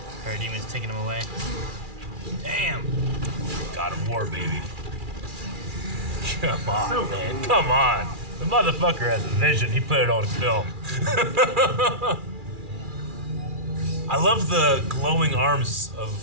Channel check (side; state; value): left; late; 2.4 ms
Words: Parademon's taking him away. Damn. God of War, baby. Come on, So man. cool. Come on. The motherfucker has a vision. He put it on film. I love the glowing arms